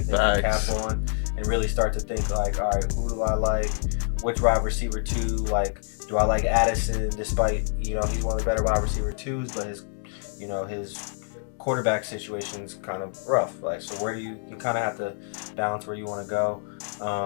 cap on and really start to think like, all right, who do I like? Which wide receiver 2? Like, do I like Addison? Despite he's one of the better wide receiver 2s, but his quarterback situation's kind of rough. Like, so where do you kind of have to balance where you want to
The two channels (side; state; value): right; silent; 60 dB below the other